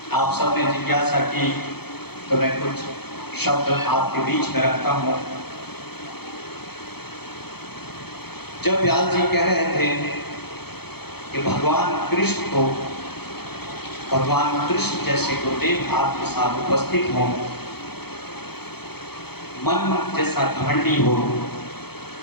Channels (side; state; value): right; late; 0.97 ms